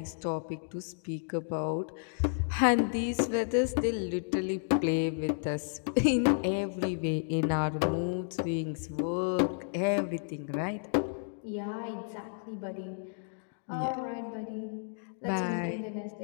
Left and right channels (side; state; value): right; silent; digital silence